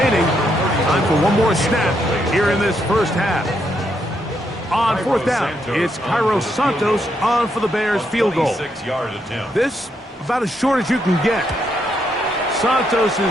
Time for one more snap here in this first half. On 4th down, it's Cairo Santos on for the Bears field goal. This about as short as you can get. Santos'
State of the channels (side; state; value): both; normal; correlation 0.77